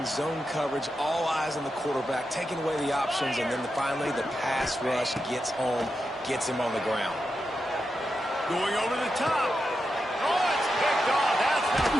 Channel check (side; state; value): both; normal; correlation 0.88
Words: zone coverage, all eyes on the quarterback, taking away the options, and then finally the pass rush gets home, gets him on the ground. Going over the top. Oh, it's picked off. That's not